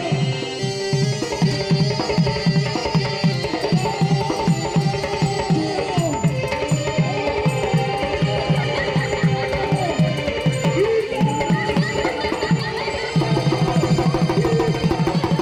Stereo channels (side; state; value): both; identical; correlation 1.00